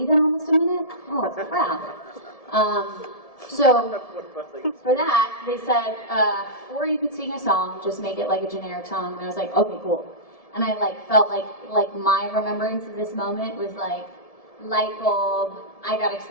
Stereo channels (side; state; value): right; late; 1.7 ms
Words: in almost a minute? Oh, crap. So for that, they said, or you could sing a song, just make it like a generic song. And I was like, okay, cool. And I like felt like my remembrance of this moment was like light bulb. I got